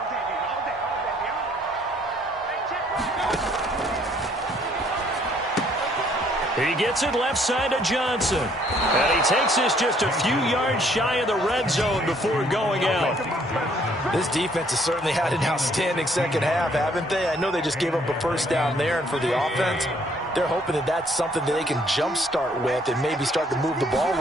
He gets it left side to Johnson. And he takes this just a few yards shy of the red zone before going out. This defense has certainly had an outstanding second half, haven't they? I know they just gave up a first down there, and for the offense, they're hoping that that's something that they can jumpstart with and maybe start to move the ball a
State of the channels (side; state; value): both; normal; correlation 0.64